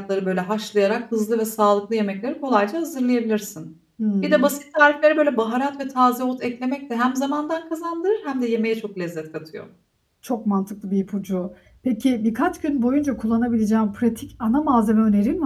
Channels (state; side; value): identical; both; correlation 1.00